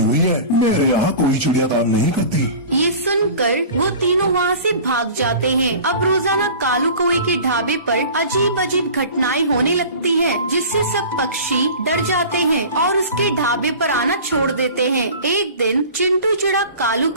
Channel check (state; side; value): inverted; both; correlation -0.39